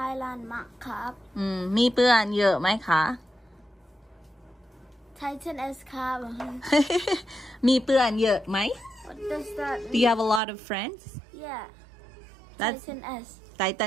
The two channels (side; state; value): left; drops out; at 10.4 s